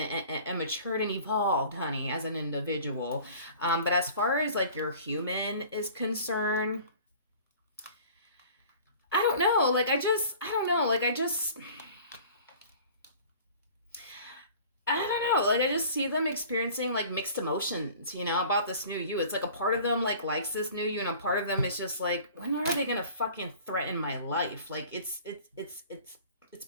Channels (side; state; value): both; inverted; correlation -0.46